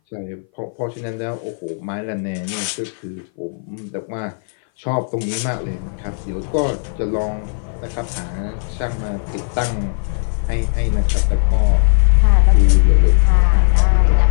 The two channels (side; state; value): right; silent; 59 dB below the other